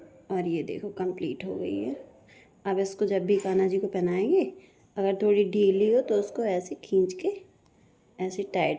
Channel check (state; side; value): identical; both; correlation 1.00